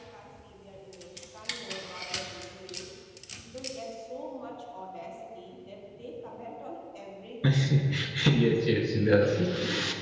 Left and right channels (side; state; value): both; identical; correlation 1.00